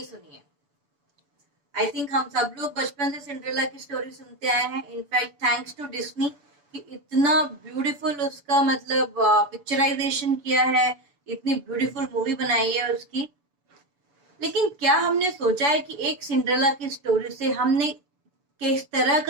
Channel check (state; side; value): late; left; 6.9 ms